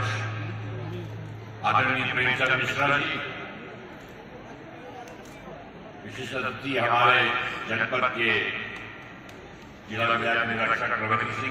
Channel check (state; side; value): identical; both; correlation 1.00